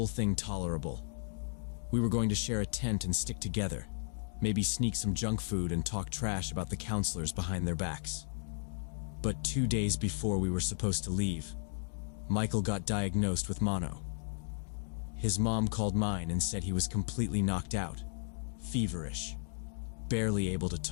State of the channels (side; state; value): right; silent; digital silence